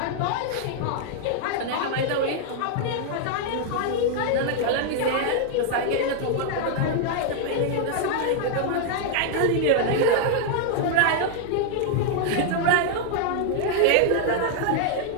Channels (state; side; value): different; both; correlation 0.00